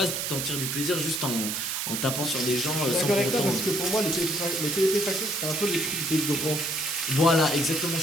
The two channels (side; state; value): right; noise; hiss, 2 dB below the sound